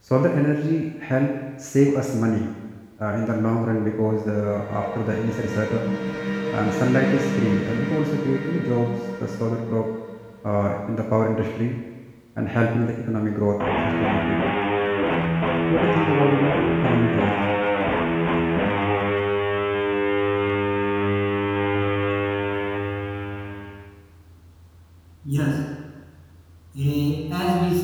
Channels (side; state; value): both; identical; correlation 1.00